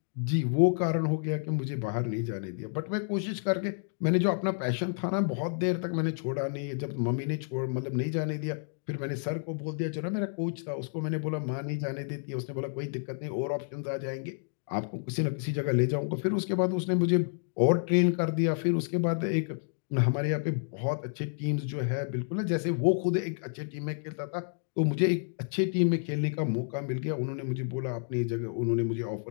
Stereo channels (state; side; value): silent; right; digital silence